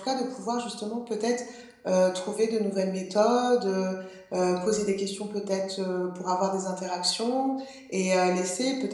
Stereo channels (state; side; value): identical; both; correlation 1.00